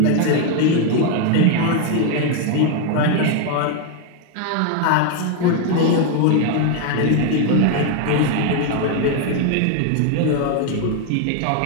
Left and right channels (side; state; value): both; different; correlation 0.01